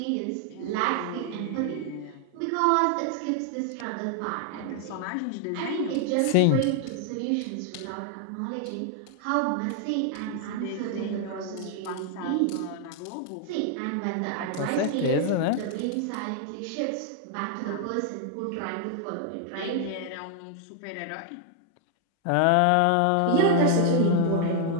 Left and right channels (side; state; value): both; different; correlation 0.00